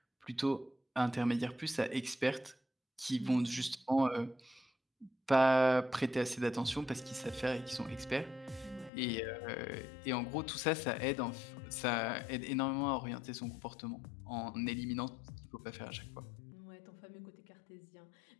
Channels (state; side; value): drops out; right; at 8.9 s